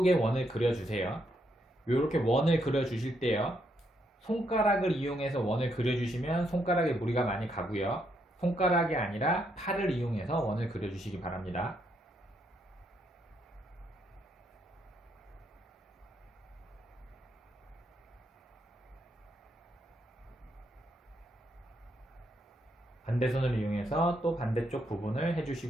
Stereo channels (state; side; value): normal; both; correlation 0.76